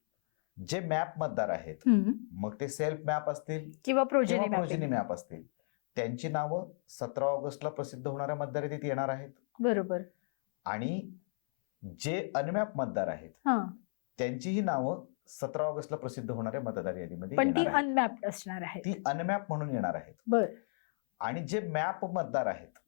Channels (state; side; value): silent; right; 55 dB below the other